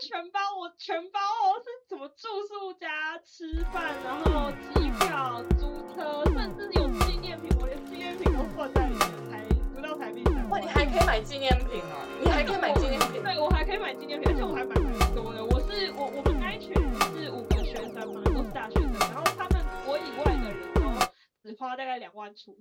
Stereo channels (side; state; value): both; identical; correlation 1.00